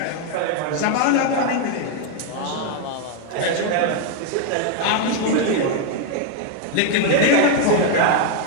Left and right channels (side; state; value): both; different; correlation 0.00